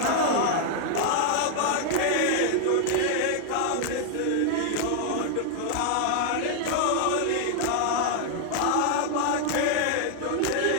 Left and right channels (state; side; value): different; both; correlation 0.00